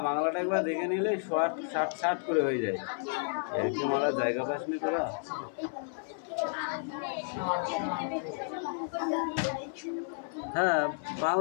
বাংলাটা একবার দেখে নিলে শর্ট শার্ট শার্ট করে হয়ে যায়। এরকম ওরা জায়গা পাস নি তোরা। হ্যাঁ,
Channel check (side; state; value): right; silent; 57 dB below the other